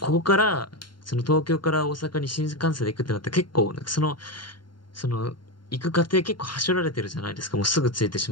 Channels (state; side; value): late; right; 0.72 ms